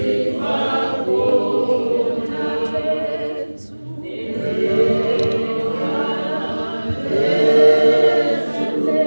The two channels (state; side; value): inverted; both; correlation -1.00